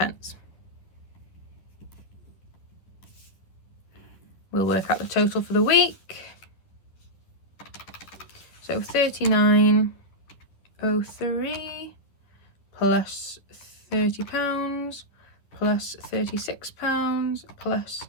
We'll work out the total for the week. So £39.03 plus £30 plus £36 plus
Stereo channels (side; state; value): right; late; 11 ms